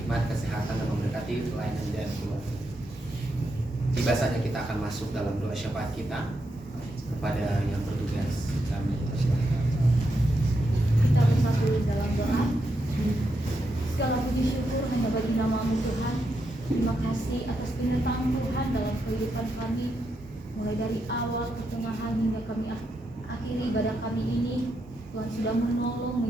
kesehatan dan memberkati pelayanan dan keluarga. Tiba saatnya kita akan masuk dalam doa syafaat kita kepada yang bertugas. Kami persilakan. Kita bersatu dalam doa. Segala puji syukur hanya bagi nama-Mu Tuhan. Terima kasih atas penyertaan Tuhan dalam kehidupan kami, mulai dari awal, pertengahan hingga kami akhiri ibadah kami ini. Tuhan sudah menolong,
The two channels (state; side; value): normal; both; correlation 0.83